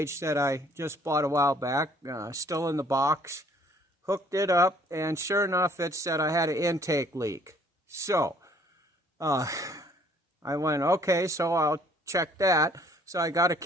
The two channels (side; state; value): both; normal; correlation 0.59